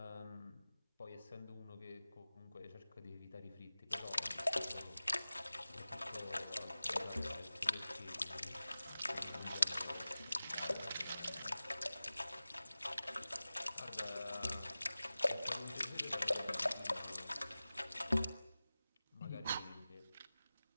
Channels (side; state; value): both; inverted; correlation -0.97